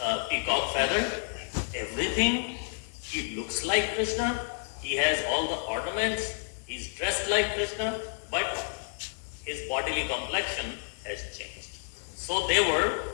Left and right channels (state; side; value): silent; right; digital silence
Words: peacock feather. Everything. He looks like Krishna. He has all the ornaments. He's dressed like Krishna. But his bodily complexion has changed. So they were